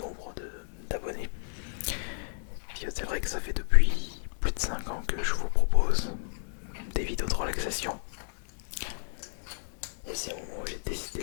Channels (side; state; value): right; silent; digital silence